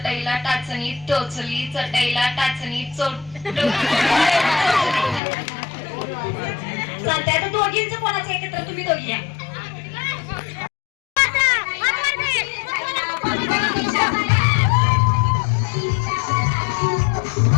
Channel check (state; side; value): drops out; right; at 5.2 s